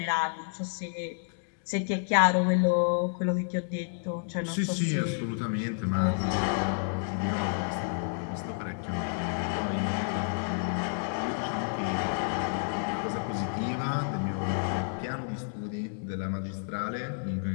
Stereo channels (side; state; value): right; silent; digital silence